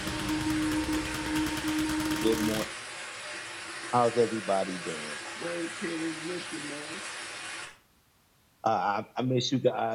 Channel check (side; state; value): both; identical; correlation 1.00